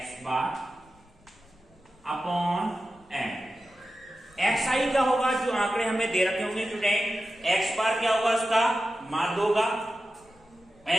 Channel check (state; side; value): noise; left; rumble, 29 dB below the sound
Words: bar upon n। xi क्या होगा, जो आंकड़े हमें दे रखे होंगे स्टूडेंट। x बार क्या होगा, उसका माध्य होगा।